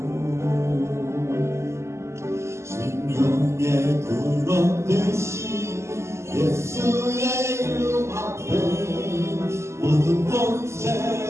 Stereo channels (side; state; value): left; late; 0.13 ms